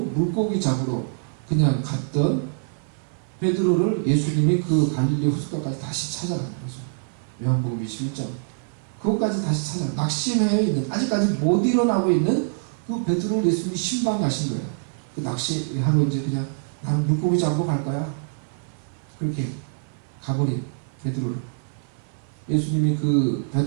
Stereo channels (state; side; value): silent; left; 55 dB below the other